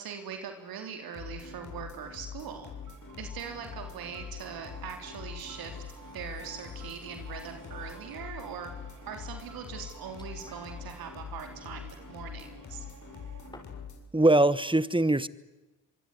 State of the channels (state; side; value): normal; both; correlation 0.63